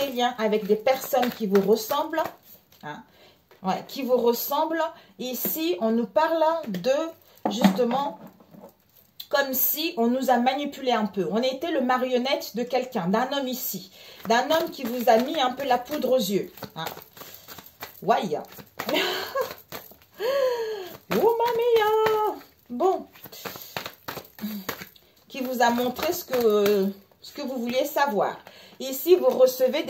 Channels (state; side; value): identical; both; correlation 1.00